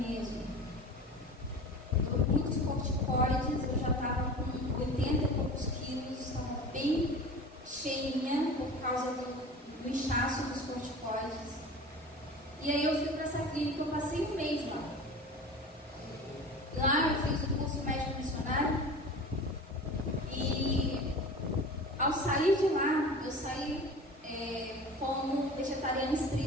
Muitos corticoides, eu já estava com 80 e poucos quilos, estava bem cheinha por causa do inchaço dos corticoides. E aí eu fui para essa clínica, eu passei um mês lá. Lá eu fiz o curso médico missionário e ao sair de lá, eu saí como vegetariana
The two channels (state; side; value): normal; both; correlation 0.36